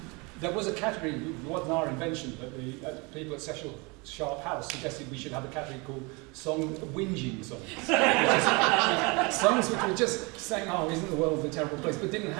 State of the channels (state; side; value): quieter; left; 28.3 dB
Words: There was a category, it wasn't our invention, but the people at Cecil Sharp House suggested we should have a category called whinging songs. Songs which were just saying, oh, isn't the world a terrible place, but didn't